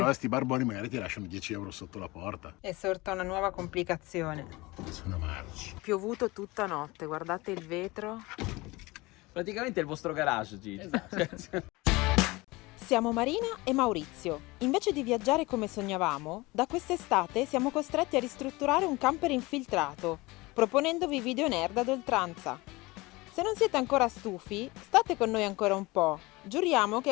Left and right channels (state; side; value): quieter; right; 22.4 dB